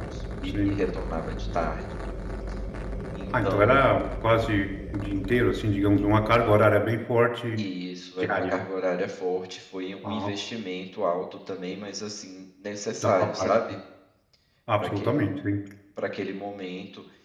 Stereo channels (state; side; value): identical; both; correlation 1.00